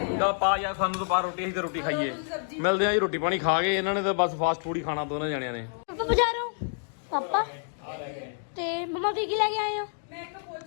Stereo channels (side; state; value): right; silent; digital silence